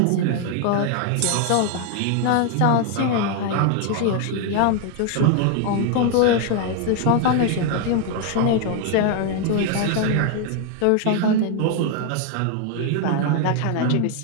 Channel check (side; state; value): both; different; correlation 0.01